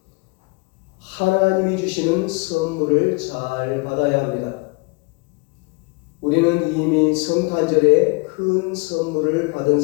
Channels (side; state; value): right; quieter; 28.5 dB